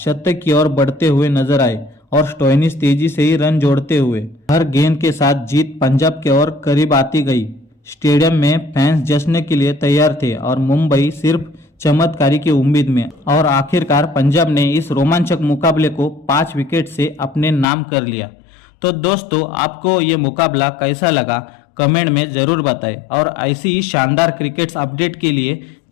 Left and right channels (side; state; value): right; drops out; at 17.7 s